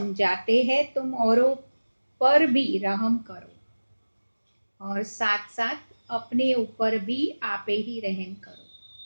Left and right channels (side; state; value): both; inverted; correlation -1.00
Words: हैं, तुम औरों पर भी रहम करो और साथ साथ अपने ऊपर भी आपे ही रहम करो।